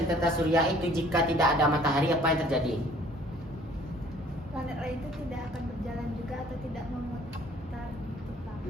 tata surya itu jika tidak ada matahari apa yang terjadi? Planet lain itu tidak akan berjalan juga atau tidak memutar gitu, Pak.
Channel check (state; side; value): normal; both; correlation 0.55